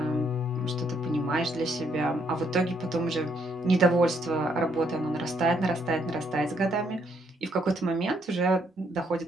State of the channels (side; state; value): both; normal; correlation 0.72